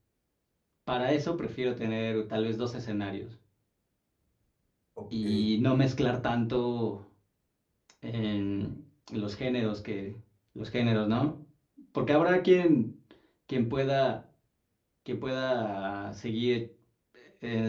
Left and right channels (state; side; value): identical; both; correlation 1.00